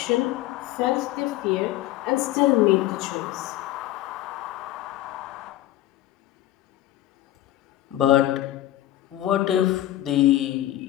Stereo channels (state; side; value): quieter; right; 14.5 dB